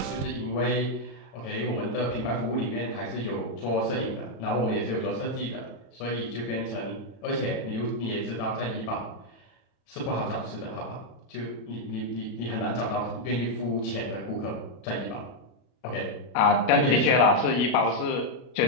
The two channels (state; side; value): late; right; 33 ms